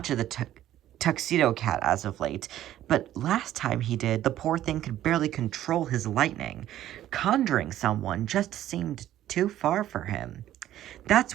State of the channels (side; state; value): left; quieter; 12.8 dB